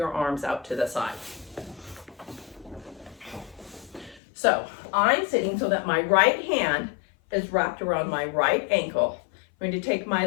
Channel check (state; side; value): drops out; right; at 4.2 s